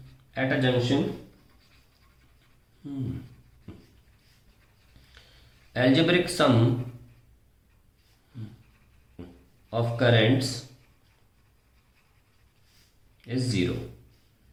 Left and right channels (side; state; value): both; identical; correlation 1.00